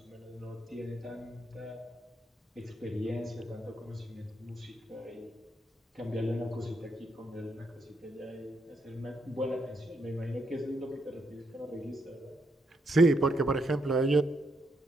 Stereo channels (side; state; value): both; normal; correlation 0.78